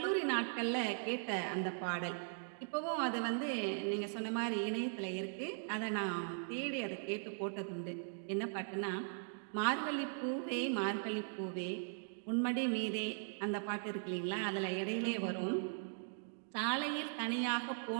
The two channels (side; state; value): left; silent; digital silence